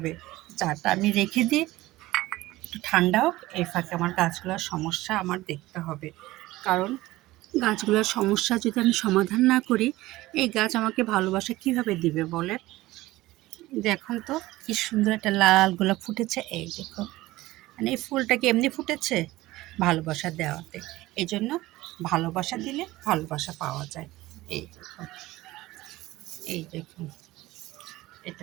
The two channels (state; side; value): quieter; left; 18.0 dB